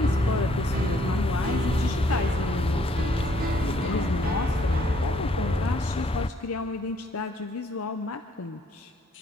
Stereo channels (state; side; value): normal; both; correlation 0.66